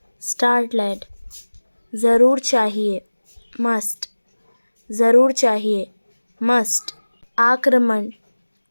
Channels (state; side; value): inverted; both; correlation -1.00